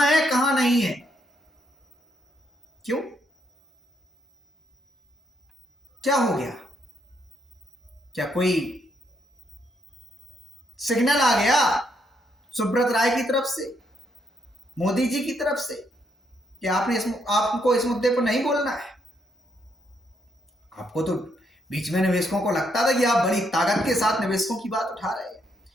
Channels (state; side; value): normal; both; correlation 0.75